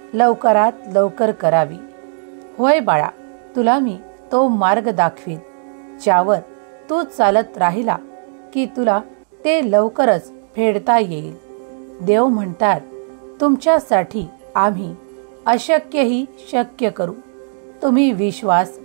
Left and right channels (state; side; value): silent; left; digital silence